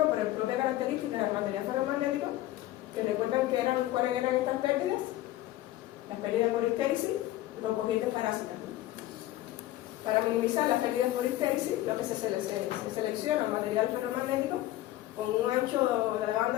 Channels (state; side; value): quieter; right; 15.3 dB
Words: por la propia característica del material ferromagnético, que recuerdan que cuáles eran estas pérdidas. las pérdidas por histéresis y por corrientes parásitas. Para minimizar las pérdidas por histéresis, lo que se selecciona un material ferromagnético con un ancho de la